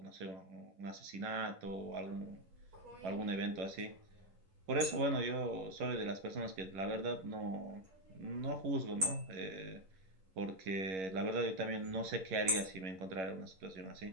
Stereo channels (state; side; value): late; left; 11 ms